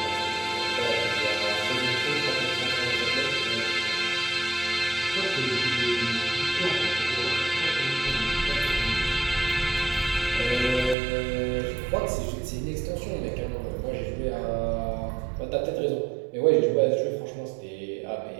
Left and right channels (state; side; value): drops out; left; at 11.0 s